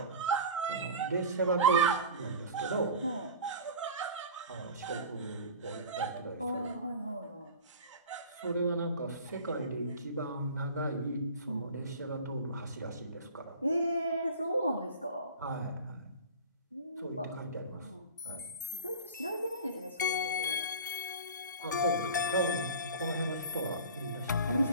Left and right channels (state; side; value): inverted; both; correlation -0.34